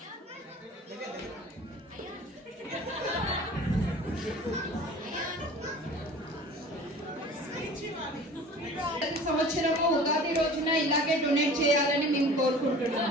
ప్రతి సంవత్సరము ఉగాది రోజున ఇలాగే డొనేట్ చేయాలని మేము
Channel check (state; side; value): normal; both; correlation 0.43